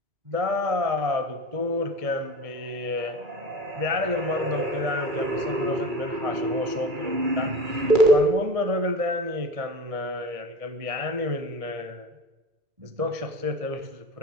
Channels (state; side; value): late; left; 2.3 ms